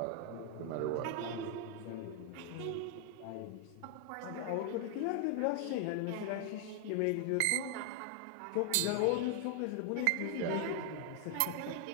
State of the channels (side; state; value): both; different; correlation 0.00